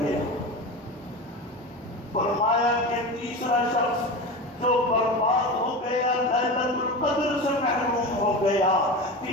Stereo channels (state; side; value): normal; both; correlation 0.27